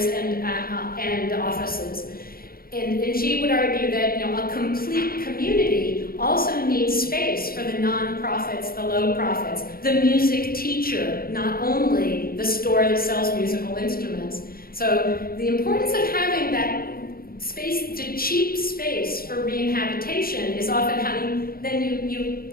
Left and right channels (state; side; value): late; right; 0.43 ms